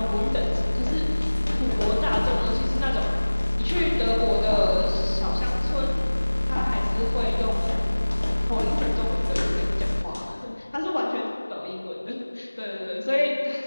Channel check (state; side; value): inverted; both; correlation -1.00